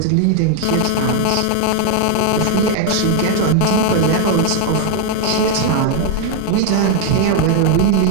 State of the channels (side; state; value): both; different; correlation 0.00